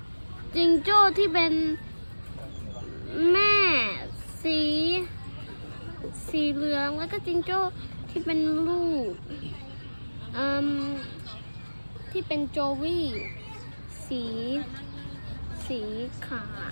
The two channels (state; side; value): inverted; both; correlation -1.00